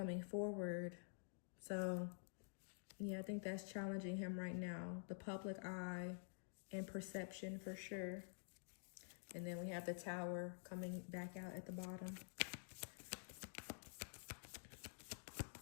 forward. So yeah, I think that's challenging him right now. The public eye and perception for sure. And then we have the Tower coming back out at the bottom.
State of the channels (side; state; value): right; silent; digital silence